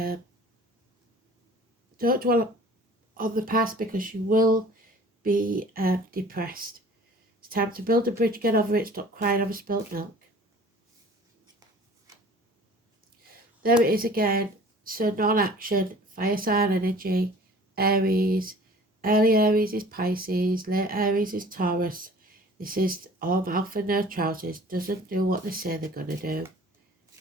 dwell on the past because you will be depressed. It's time to build a bridge, get over it, stop crying over spilt milk. There it is again. So non-action, fire sign energy, Aries. Early Aries is Pisces, late Aries is Taurus. This is all mouth and no trousers. Doesn't do what they say they're going to do.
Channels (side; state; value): both; normal; correlation 0.47